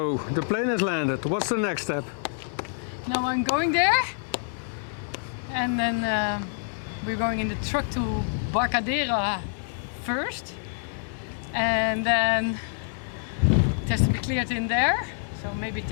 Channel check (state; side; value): silent; right; 60 dB below the other